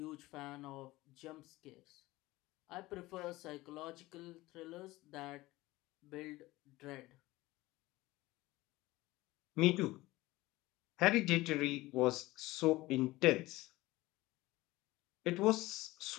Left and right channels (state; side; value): quieter; right; 19.0 dB